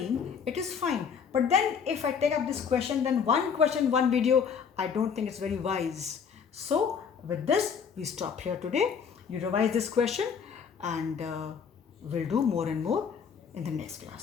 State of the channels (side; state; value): right; quieter; 6.7 dB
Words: it is fine. But then if I take up this question, then one question, one video, I don't think it's very wise. So with this, we stop here today. You revise this question, and we'll do more and more in the next